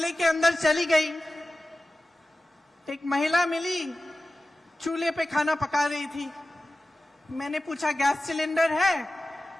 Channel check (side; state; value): both; normal; correlation 0.95